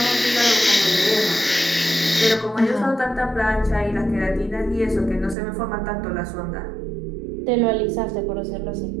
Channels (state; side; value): drops out; left; at 5.4 s